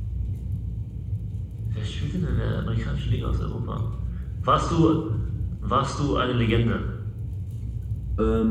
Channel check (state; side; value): identical; both; correlation 1.00